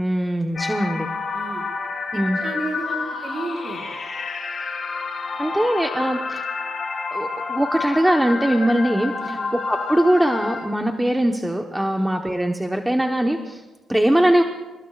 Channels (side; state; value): both; normal; correlation 0.94